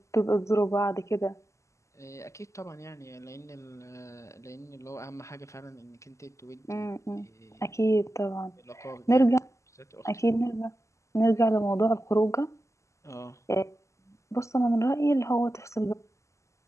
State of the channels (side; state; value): right; late; 0.14 ms